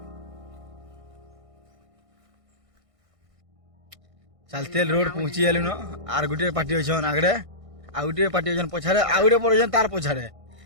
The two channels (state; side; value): late; left; 1.6 ms